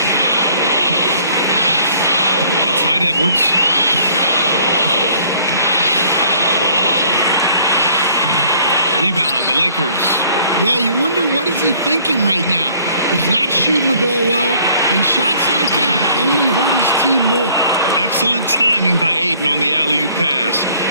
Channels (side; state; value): both; inverted; correlation -0.58